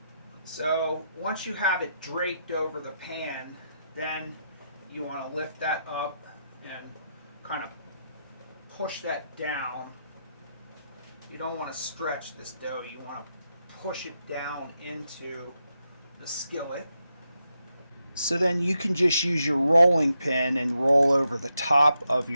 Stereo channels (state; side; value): inverted; both; correlation -0.84